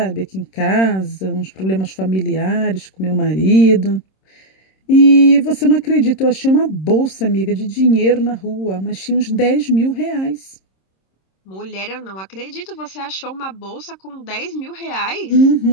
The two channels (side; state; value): right; late; 26 ms